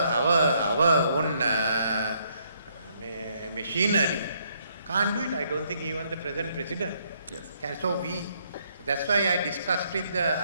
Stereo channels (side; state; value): both; inverted; correlation -0.71